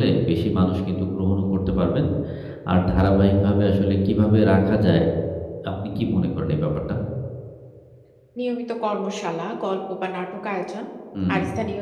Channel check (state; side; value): identical; both; correlation 1.00